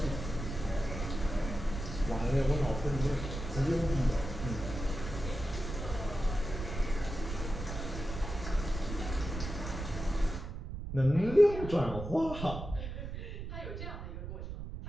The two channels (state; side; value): noise; right; rumble, 7 dB below the sound